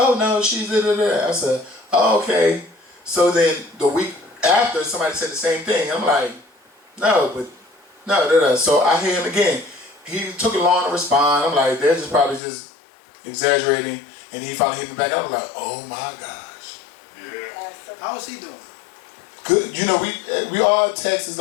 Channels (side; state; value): right; drops out; at 12.4 s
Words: no, she's I said, oh, okay. So then the week after, somebody said the same thing. I'm like, no. So I hear him again. He took it long to respond. I'm like, they're just probably just exaggerating. And he finally hit me back. I was like, oh my gosh. Yeah. How is he doing? Good. You know, we all text. It's